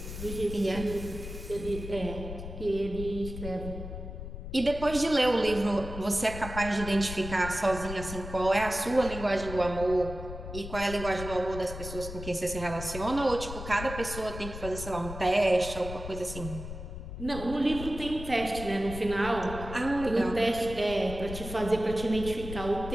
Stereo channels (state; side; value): noise; left; rumble, 9 dB below the sound